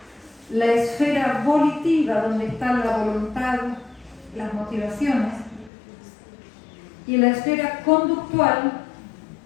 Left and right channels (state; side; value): drops out; right; at 5.7 s